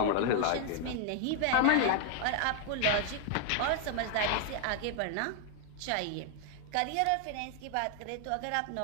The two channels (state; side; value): different; both; correlation 0.00